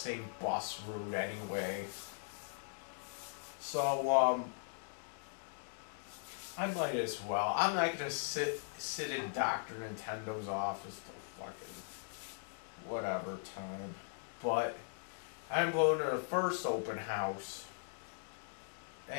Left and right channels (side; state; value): right; silent; digital silence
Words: bus route anyway. So I might as well. I'm not gonna sit in Dr. Nintendo's office till fucking whatever time. But I'm going to the first open house,